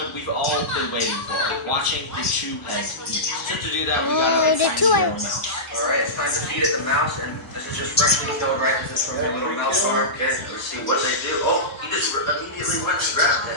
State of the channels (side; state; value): both; normal; correlation -0.16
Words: we've all been waiting for, watching the two heads eat. So to do that, we gotta the find two the little heads. mouse. Alright, it's time to feed it the mouse, and this is just freshly killed right this is from your little mouse farm. Okay, let's see what they do. Oh, he just immediately went and grabbed